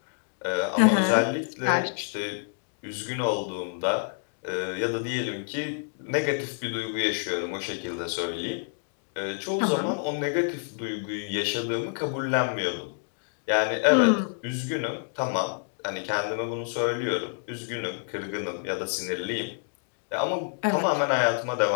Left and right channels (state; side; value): silent; right; digital silence